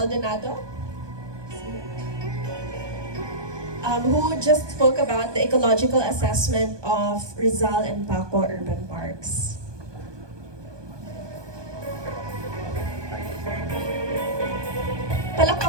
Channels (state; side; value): late; left; 1.2 ms